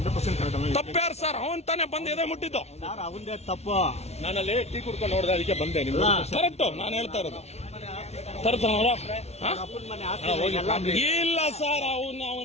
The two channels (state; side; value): late; right; 0.31 ms